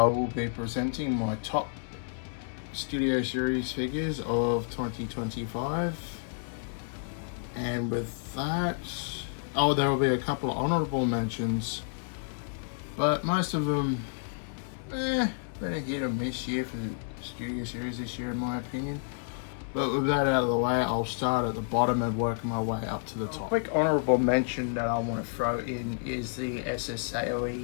will be presenting my top Studio Series figures of 2025. And with that, there will be a couple of honorable mentions, but most of them, been a hit or miss year for the Studio Series this year in my opinion. But with that out of the way, I'll start at the bottom and work my way up to the top. A quick honourable mention that I want to throw in is the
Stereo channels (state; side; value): silent; right; digital silence